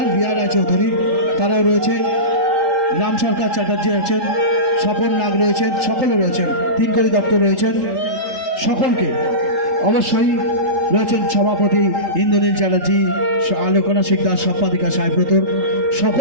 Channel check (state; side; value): late; left; 3.8 ms